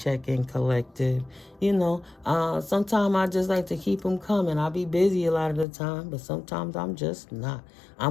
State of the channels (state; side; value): drops out; right; at 5.7 s